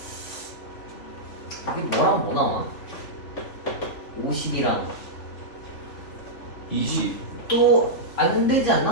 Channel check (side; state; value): right; late; 3.4 ms